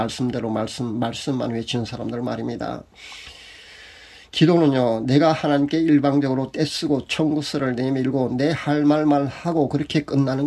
말씀만 외치는 사람들 말입니다. 기도는요, 내가 하나님께 일방적으로 떼쓰고 청구서를 내밀고 내 할 말만 하고 그렇게 끝나는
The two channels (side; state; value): both; identical; correlation 1.00